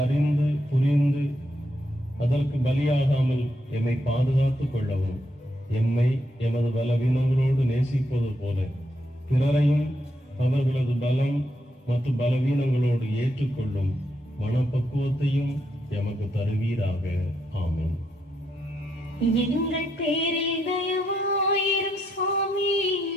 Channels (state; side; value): normal; both; correlation 0.79